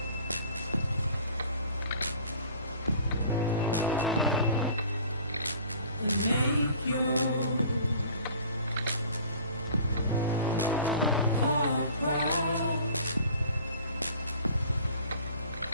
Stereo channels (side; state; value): both; inverted; correlation -0.49